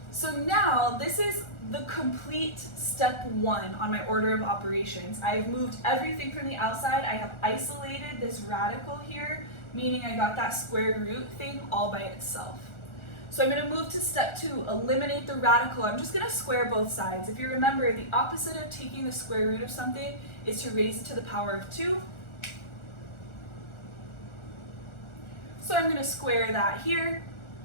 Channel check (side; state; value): right; late; 1.4 ms